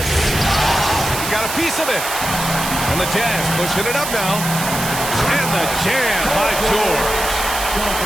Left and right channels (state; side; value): noise; right; hiss, 5 dB below the sound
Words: He got a piece of it. And the Jazz pushing it up now. And the jam by George.